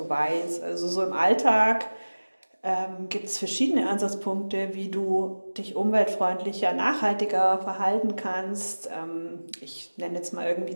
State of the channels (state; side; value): inverted; both; correlation -1.00